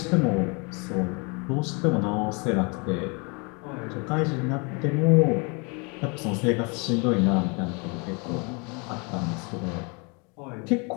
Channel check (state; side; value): quieter; right; 31.8 dB